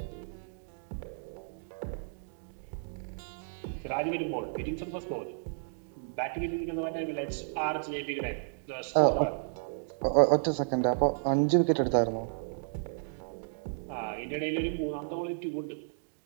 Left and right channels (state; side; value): silent; left; digital silence